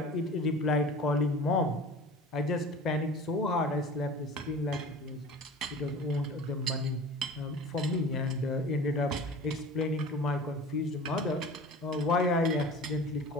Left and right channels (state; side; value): normal; both; correlation 0.39